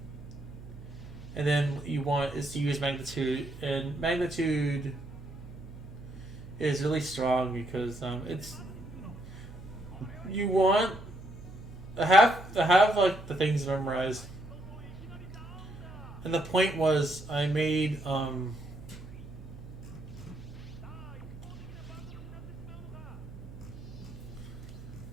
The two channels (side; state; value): right; noise; hum, 15 dB below the sound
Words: and then you want is to use Magnitude, and Magnitude is really strong because it's you want I have like the things memorized, and the point was I made